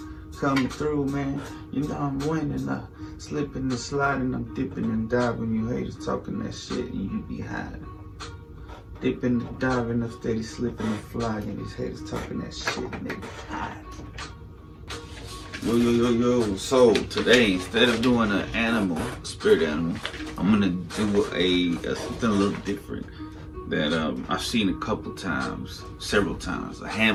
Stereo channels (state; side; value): identical; both; correlation 1.00